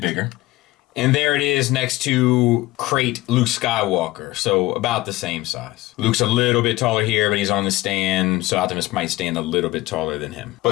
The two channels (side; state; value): right; quieter; 18.7 dB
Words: And there it is next to Crate Luke Skywalker. So about the same size. Luke's a little bit taller here, but he's on the stand. So Optimus might stand a little bit taller than him.